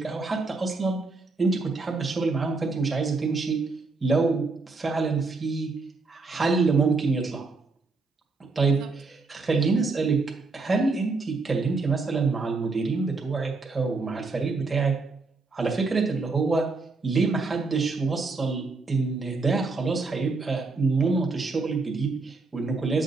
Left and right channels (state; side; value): quieter; left; 3.9 dB